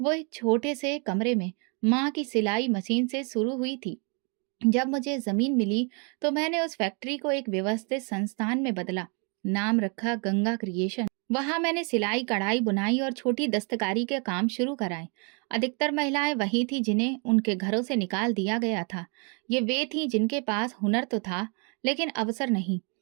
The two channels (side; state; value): left; quieter; 35.7 dB